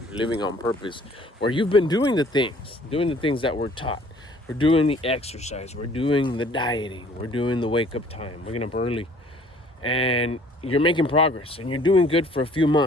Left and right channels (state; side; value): normal; both; correlation 0.55